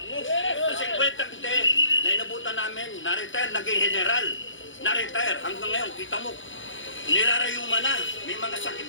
Sa 50 hindi, na inabutan namin, na-retire, naging general. Na-retire. Hanggang ngayon, kita mo, nirarayuma na. May mga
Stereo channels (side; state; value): right; late; 0.56 ms